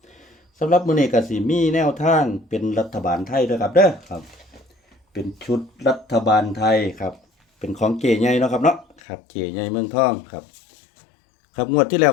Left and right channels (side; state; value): right; drops out; at 9.0 s